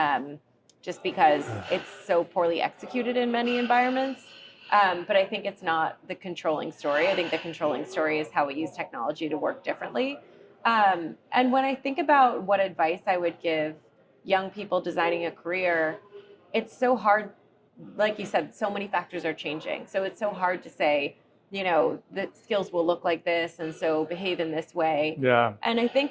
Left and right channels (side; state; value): both; identical; correlation 1.00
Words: just because it's so poorly executed in many environments. But I think it's not the controlling story. I think the controlling story is how we use technology to work differently. And when I think about what advice I would give young people designing a career, it's so hard. Like you said, so many factors are changing. So it's so hard to say, the skills will look like this, and so behave in this way. yeah, And I